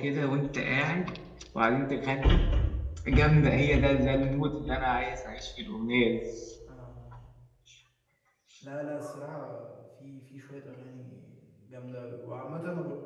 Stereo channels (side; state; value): both; identical; correlation 1.00